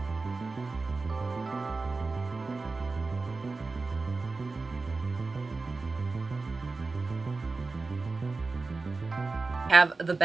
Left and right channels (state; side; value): quieter; left; 3.9 dB